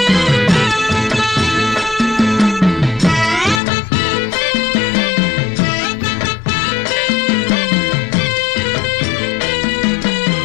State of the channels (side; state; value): right; drops out; at 3.6 s